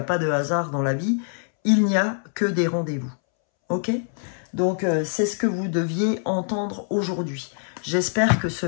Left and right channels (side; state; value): right; silent; 63 dB below the other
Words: pas de hasard dans la vie, il n'y a que des rendez-vous. Ok ? Donc, c'est ce que vous deviez entendre aujourd'hui. J'espère que ce